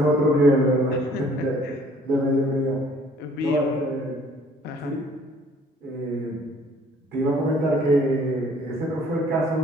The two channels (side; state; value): both; normal; correlation 0.57